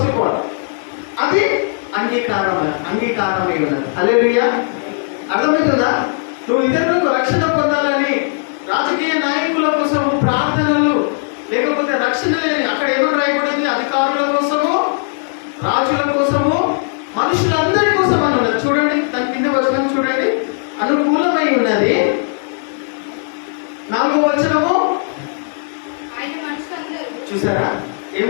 ఆఫ్ ఆల్ అది అంగీకారమే ఉన్నది. హల్లెలూయా అర్థమవుతుందా? నువ్వు ఇతరులకు రక్షణ పొందాలని రాజకీయ నాయకుల కోసము ప్రార్థనలు లేకపోతే రక్షణ లేని అక్కడ ఏమని రాయబడింది అధికారుల కోసము రాజుల కోసము మనుషులందరి కోసం అని ఉన్నది. చూడండి దాని కింద వచనం చూడండి అనుకూలమై ఉన్నది. 4వ వచనము చూసారా ఏం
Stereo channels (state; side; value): silent; right; digital silence